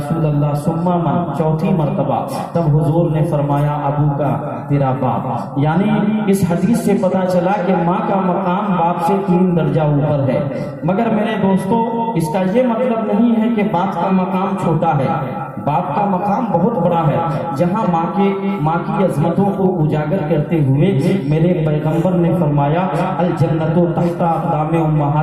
اللہ ثم من، 4تھی مرتبہ، تب حضور نے فرمایا ابو کا، تیرا باپ۔ یعنی اس حدیث سے پتہ چلا کہ ماں کا مقام باپ سے 3 درجہ اوپر ہے۔ مگر میرے دوستو، اس کا یہ مطلب نہیں ہے کہ باپ کا مقام چھوٹا ہے، باپ کا مقام بہت بڑا ہے۔ جہاں ماں کی عظمتوں کو اجاگر کرتے ہوئے میرے پیغمبر نے فرمایا الجنت تحت اقدام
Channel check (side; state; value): both; identical; correlation 1.00